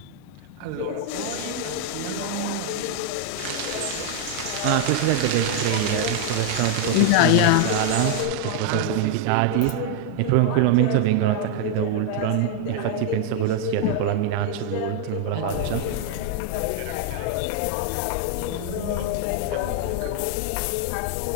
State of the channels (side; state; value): both; different; correlation 0.00